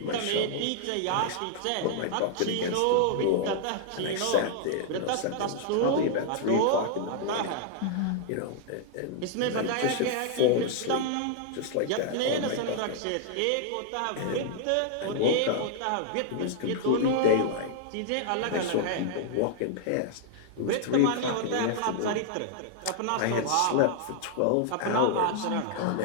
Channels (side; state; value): both; different; correlation -0.01